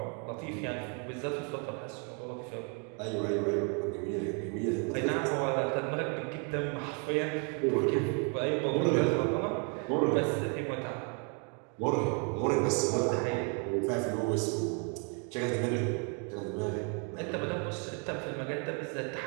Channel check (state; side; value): quieter; left; 37.4 dB